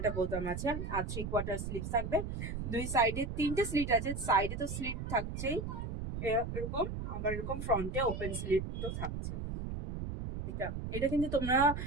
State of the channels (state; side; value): noise; right; rumble, 5 dB below the sound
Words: একটা বোতাম আছে, আর 3/4 স্লিভ থাকবে। দুই সাইডে 3টে স্লিট আছে, সাইডে তো স্লিট থাকছেই এরকম, আবার এরকম ফ্রন্টে ওপেন স্লিট তো থাকছে। এটা এটা কিন্তু তোমরা